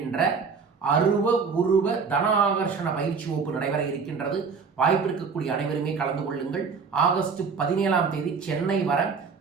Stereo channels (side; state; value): left; quieter; 5.4 dB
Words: அருவ உருவ தன ஆகர்ஷண பயிற்சி வகுப்பு நடைபெற இருக்கின்றது. வாய்ப்பு இருக்கக்கூடிய அனைவருமே கலந்து கொள்ளுங்கள். ஆகஸ்ட் 17ஆம் தேதி சென்னை வர